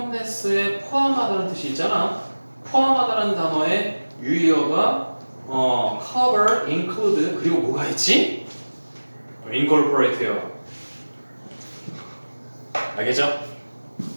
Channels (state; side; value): inverted; both; correlation -1.00